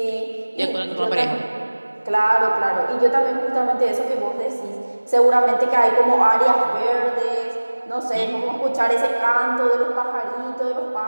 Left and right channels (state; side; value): inverted; both; correlation -1.00